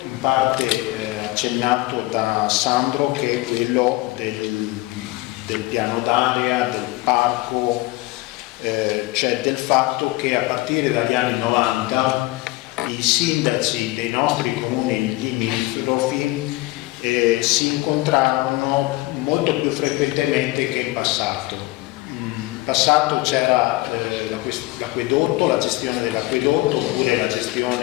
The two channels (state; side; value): quieter; right; 20.2 dB